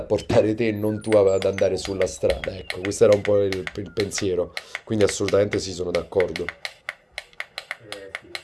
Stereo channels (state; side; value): identical; both; correlation 1.00